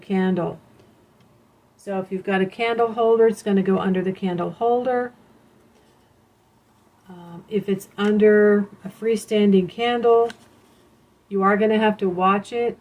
So if you've got a candle holder, it's going to go under the candle holder. If it's under a freestanding candle, you are going to have to watch it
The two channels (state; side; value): identical; both; correlation 1.00